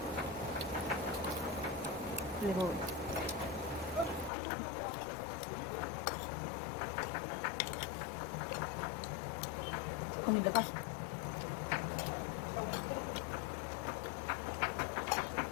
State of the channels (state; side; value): drops out; right; at 4.3 s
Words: 그리고 국민들 가시.